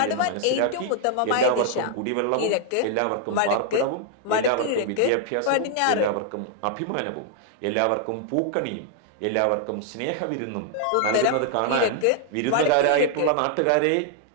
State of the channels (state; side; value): different; both; correlation -0.01